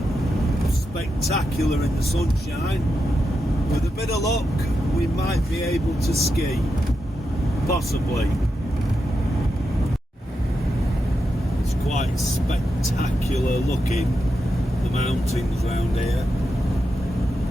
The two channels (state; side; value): normal; both; correlation 0.87